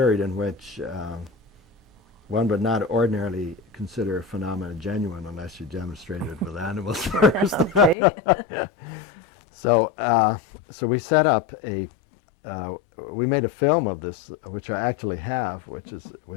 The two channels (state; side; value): drops out; right; at 8.0 s